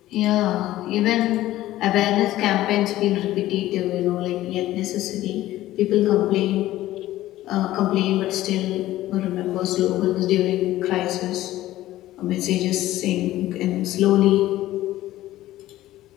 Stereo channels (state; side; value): quieter; right; 15.1 dB